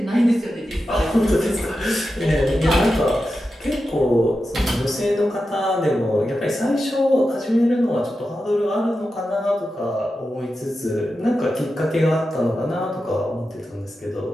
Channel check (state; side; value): normal; both; correlation 0.90